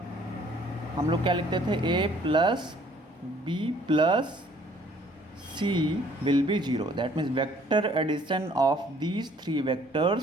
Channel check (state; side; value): normal; both; correlation 0.59